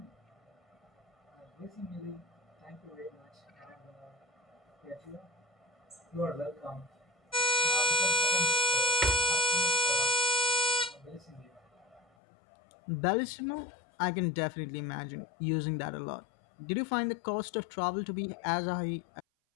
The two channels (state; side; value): drops out; right; at 12.1 s